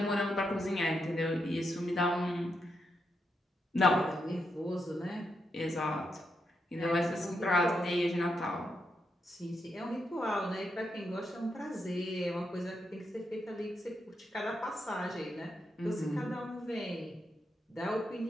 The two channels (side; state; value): both; normal; correlation 0.83